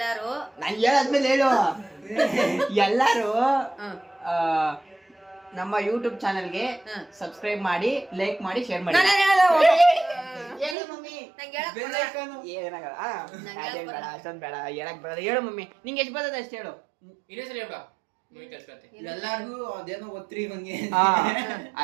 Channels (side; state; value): left; drops out; at 10.8 s